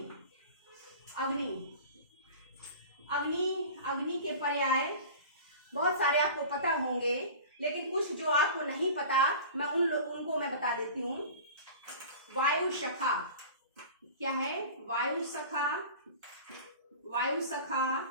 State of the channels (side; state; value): both; inverted; correlation -0.38